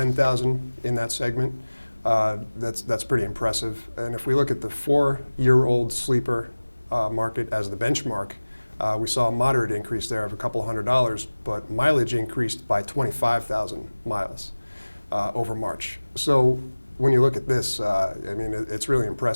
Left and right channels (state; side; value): inverted; both; correlation -1.00